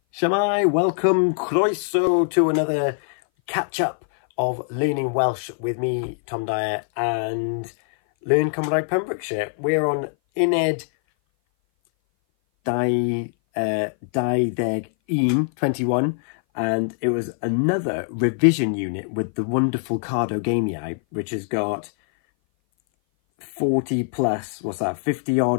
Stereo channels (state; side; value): silent; right; 58 dB below the other